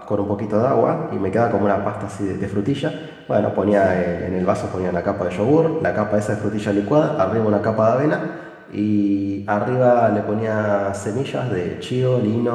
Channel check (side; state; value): both; identical; correlation 1.00